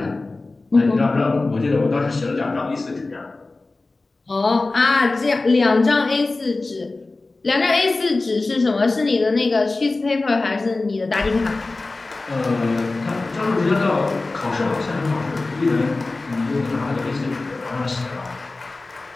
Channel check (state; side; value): quieter; right; 3.3 dB